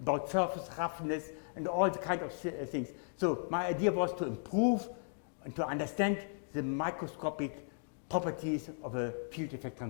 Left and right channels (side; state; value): right; silent; digital silence